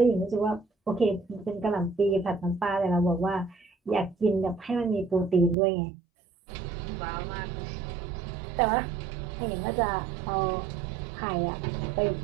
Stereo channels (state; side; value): drops out; left; at 5.6 s